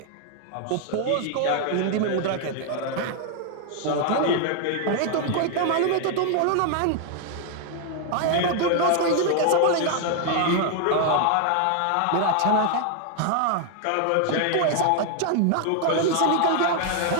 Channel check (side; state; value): both; different; correlation 0.00